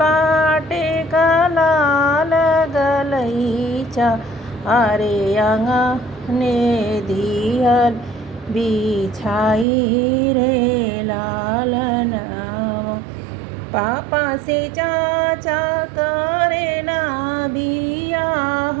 पाटका लाल गलईच्या अरे अंगणे दिहल बिछाई रे लाल नावा पापा से चाचा करेला बियाह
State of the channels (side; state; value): left; drops out; at 9.7 s